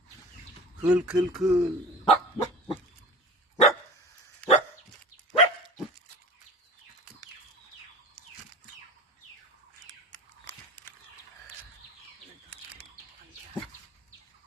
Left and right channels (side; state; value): both; normal; correlation 0.36